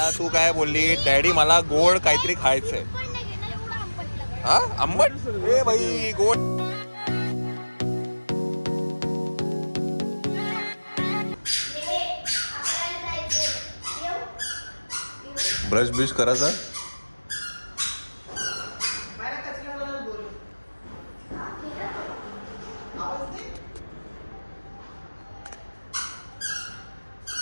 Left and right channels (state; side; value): inverted; both; correlation -1.00